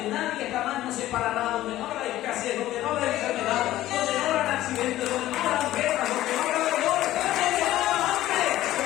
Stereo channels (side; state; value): right; quieter; 14.6 dB